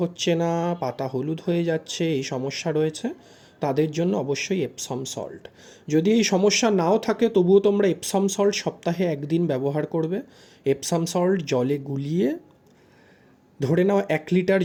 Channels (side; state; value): both; identical; correlation 1.00